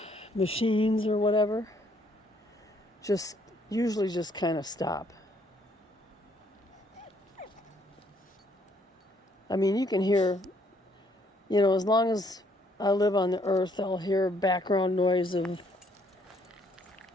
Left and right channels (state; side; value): normal; both; correlation 0.67